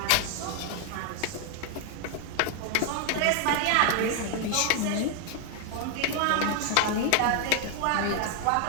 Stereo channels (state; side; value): different; both; correlation 0.00